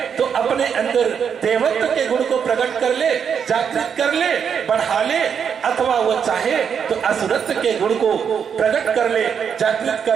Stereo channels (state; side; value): quieter; left; 7.3 dB